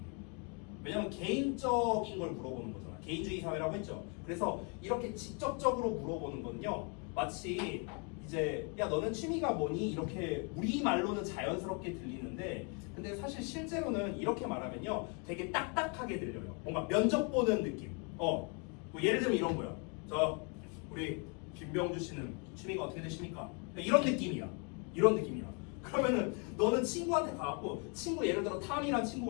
왜냐면 개인적인 걸 물어보는 거잖아. 개인주의 사회라고 했죠. 그래서 이렇게 직접적으로 물어보는 건요. 마치 이제 야 너는 취미가 뭐니? 이렇게 우리말로는 자연스럽게 들리는데 근데 사실 실제로는 이렇게 말하면요. 되게 딱딱하게 들려요. 뭔가 면접 보는 느낌. 뭐 예를 들면 이런 거야. 우리 김병주 씨는 취미가 어떻게 되십니까? 이런 느낌이야. 그러면은 너는 친구한테 가갖고 친구 예를 들어 탐이란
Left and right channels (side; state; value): right; quieter; 35.4 dB